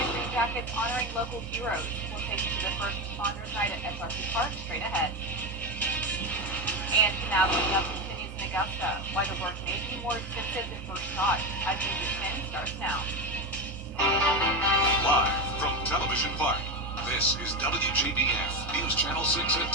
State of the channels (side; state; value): both; normal; correlation 0.16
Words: Green Jackets honoring local heroes. We'll take you to the first responders night at SRC Park straight ahead. And now coming up continues in Augusta. Why the work may be more expensive than first thought. As News at 10 starts now. Live from Television Park, this is WJBF News Channel 6 at